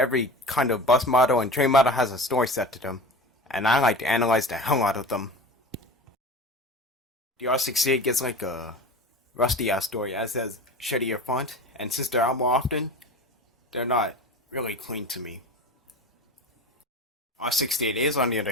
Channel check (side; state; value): both; normal; correlation 0.33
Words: kind of bus model and train model has a story set to them, and I like to analyze the hell out of them. The R68 gets like a rusty ass story, as has shittier font, and since they're out more often, they're not really clean to me. R68As, on the